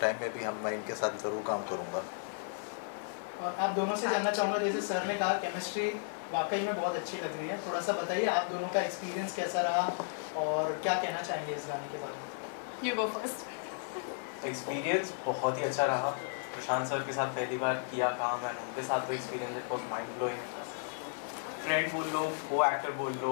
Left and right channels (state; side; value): silent; right; 55 dB below the other